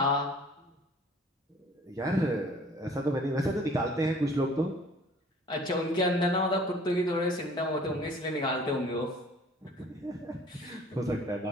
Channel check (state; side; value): normal; both; correlation 0.52